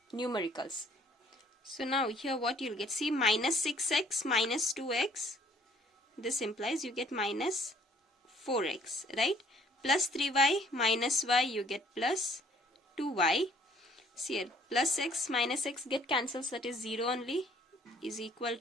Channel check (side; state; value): both; normal; correlation 0.60